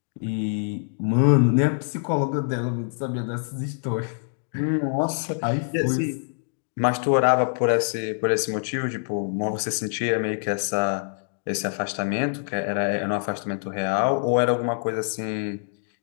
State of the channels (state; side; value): silent; right; digital silence